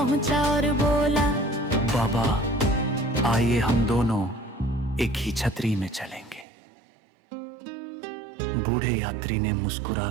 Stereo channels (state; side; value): drops out; left; at 6.5 s